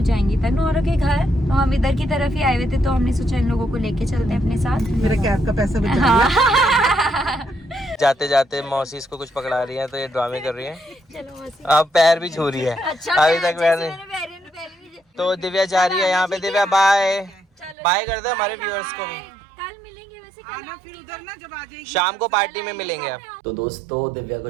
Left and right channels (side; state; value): left; drops out; at 17.8 s